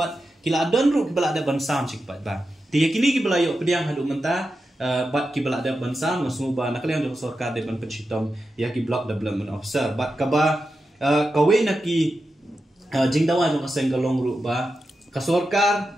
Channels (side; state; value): both; normal; correlation 0.90